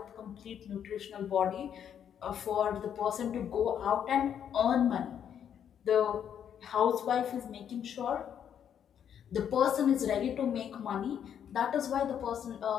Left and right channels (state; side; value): quieter; right; 8.9 dB